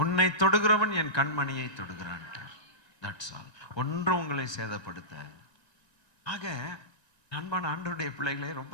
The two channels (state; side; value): late; right; 1.9 ms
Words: தொடுகிறவன் என் கண்மணியை தொடுகிறான். That's all. ஒன்றும் உங்களை சேதப்படுத்த. ஆக அன்பான ஆண்டவருடைய பிள்ளைகளே,